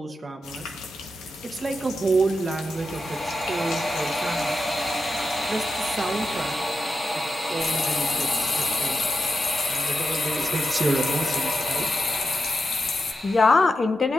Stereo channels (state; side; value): normal; both; correlation 0.87